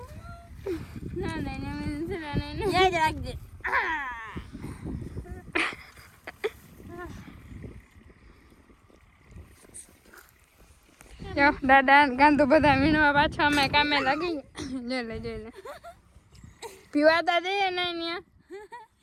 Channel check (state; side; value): identical; both; correlation 1.00